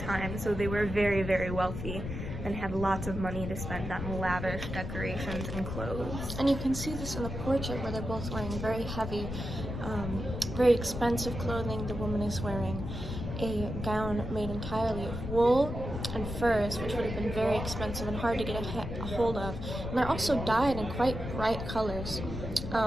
so they were very, very wealthy and had lots of money to spend on lavish decorations and clothes. And you can see this in the portrait where they're both wearing very heavy, very expensive clothing. The woman is wearing a gown made entirely of wool and furs, which would have been very expensive and hard to get a hold of. And they're also dyed in quite bright colors,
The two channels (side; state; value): left; noise; rumble, 6 dB below the sound